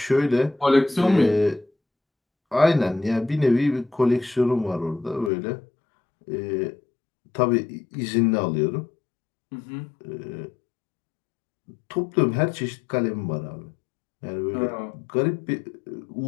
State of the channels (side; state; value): right; drops out; at 5.3 s